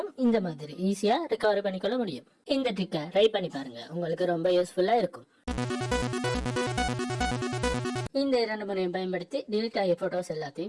இந்த மாதிரி ஈஸியா ரெக்கவரி பண்ணிக்கொள்ள முடியும். இந்த ட்ரிக்கை ட்ரை பண்ணி பாருங்க, உங்களுக்கு ரொம்ப யூஸ்ஃபுல்லா இருக்கும். இந்த 2 முறையும் பயன்படுத்தி டெலிட் ஆகிய போட்டோஸ்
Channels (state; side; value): identical; both; correlation 1.00